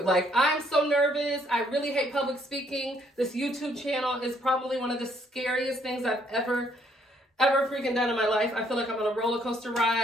Like, I'm so nervous. I really hate public speaking. This YouTube channel is probably one of the scariest things I've ever freaking done in my life. I feel like I'm on a roller coaster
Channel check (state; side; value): normal; both; correlation 0.68